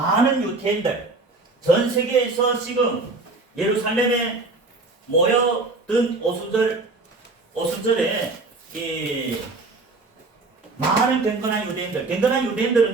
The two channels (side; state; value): left; quieter; 3.5 dB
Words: 유대인들 전 세계에서 지금 예루살렘에 모여든 오순절에 많은 경건한 유대인들은